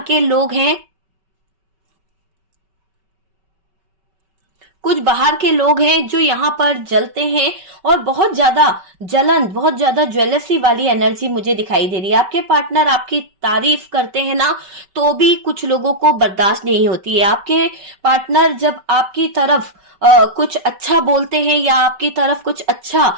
के लोग हैं, कुछ बाहर के लोग हैं जो यहाँ पर जलते हैं और बहुत ज्यादा जलन, बहुत ज्यादा ज्वेलसी वाली एनर्जी मुझे दिखाई दे रही है। आपके पार्टनर आपकी तारीफ करते हैं ना, तो भी कुछ लोगों को बर्दाश्त नहीं होती है। आपके पार्टनर जब आपकी तरफ कुछ अच्छा बोलते हैं या आपकी तरफ कुछ अच्छा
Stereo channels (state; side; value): late; left; 5.2 ms